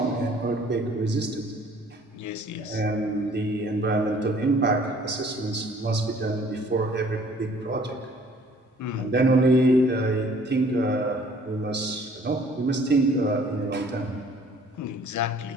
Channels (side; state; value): both; normal; correlation 0.56